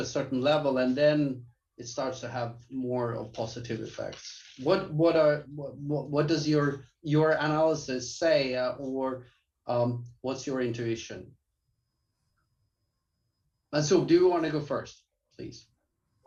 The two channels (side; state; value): both; identical; correlation 1.00